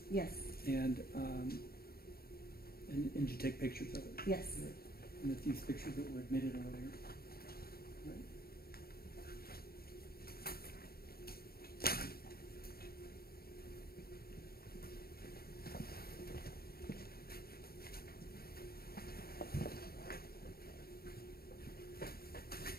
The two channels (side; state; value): right; late; 0.44 ms